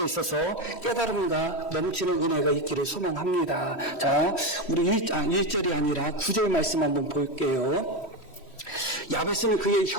있어서 깨달음과 넘치는 은혜가 있기를 소망합니다. 자, 우리 1절이 아니라 9절 말씀 한번 볼게요. 야베스는 그의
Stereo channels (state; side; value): late; right; 3.1 ms